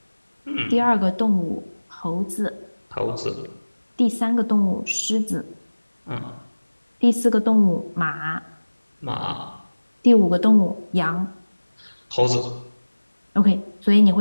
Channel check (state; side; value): inverted; both; correlation -1.00